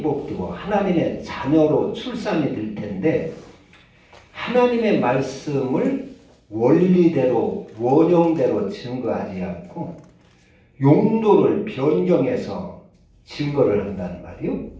하나님의 자녀로 출산이 될 텐데, 하나님의 말씀을 원리대로 원형대로 증거하지 않고 용도를 변경해서 증거를 한다는 말이요.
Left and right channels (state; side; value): identical; both; correlation 1.00